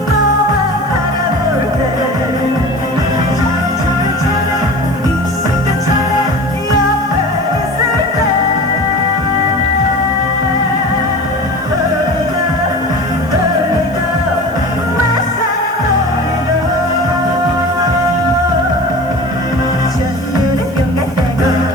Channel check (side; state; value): right; noise; hiss, 26 dB below the sound